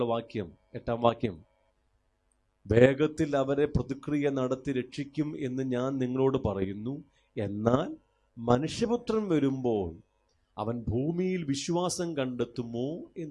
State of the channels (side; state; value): both; identical; correlation 1.00